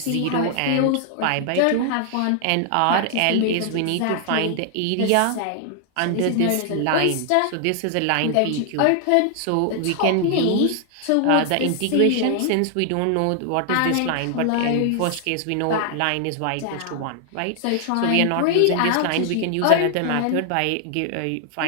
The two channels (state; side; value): different; both; correlation 0.00